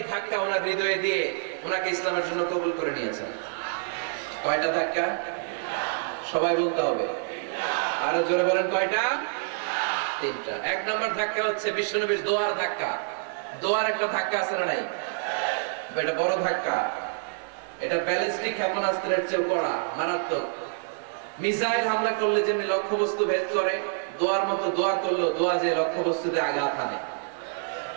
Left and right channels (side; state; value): left; silent; 60 dB below the other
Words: ধাক্কা ওনার হৃদয়ে দিয়ে ওনাকে ইসলামের জন্য কবুল করে নিয়েছেন। কয়টা ধাক্কা? সবাই বলতে হবে, আরো জোরে বলেন কয়টা? তিনটা। এক নম্বর ধাক্কা হচ্ছে বিশ্বনবীর দোয়ার ধাক্কা। দোয়ার একটা ধাক্কা আছে না নাই? এটা বড় ধাক্কা। এটা ব্যালিস্টিক ক্ষেপণাস্ত্রের চেয়ে কড়া, মারাত্মক। মিসাইল হামলা করলে যেমনি লক্ষ্যবস্তু ভেদ করে, দোয়ার মতো দোয়া করলো দোয়া যে লক্ষ্যবস্তুতে আঘাত হানে,